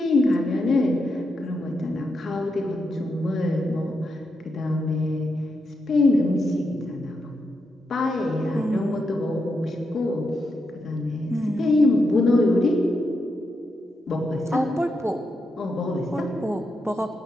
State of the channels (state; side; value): normal; both; correlation 0.84